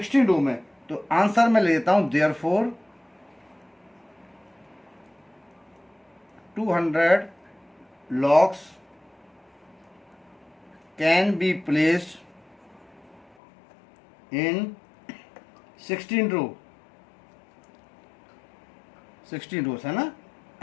रो में। तो आंसर में ले लेता हूं therefore 200 logs can be placed in 16 रो, 16 रोज है ना,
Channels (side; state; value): right; drops out; at 13.2 s